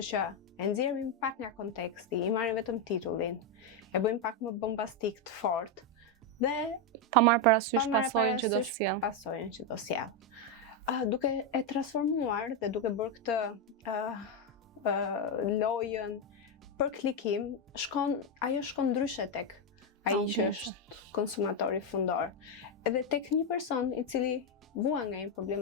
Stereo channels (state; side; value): normal; both; correlation 0.05